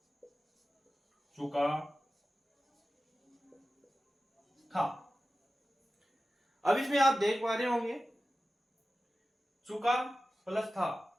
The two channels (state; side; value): normal; both; correlation 0.95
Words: चुका था। अब इसमें आप देख पा रहे होंगे चुका प्लस था